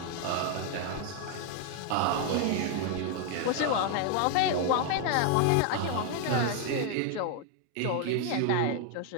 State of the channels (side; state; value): both; different; correlation 0.00